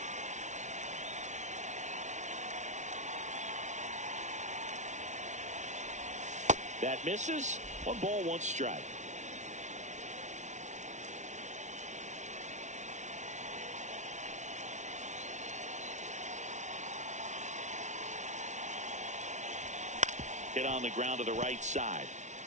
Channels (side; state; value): left; late; 0.34 ms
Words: That misses. 1 ball, 1 strike. Hit on the ground to the right side.